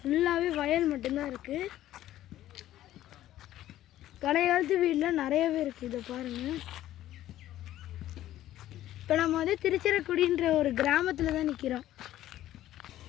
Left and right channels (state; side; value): quieter; right; 13.5 dB